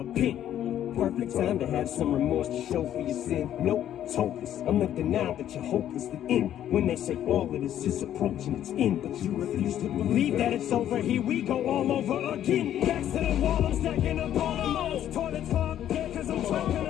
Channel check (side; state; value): right; quieter; 11.1 dB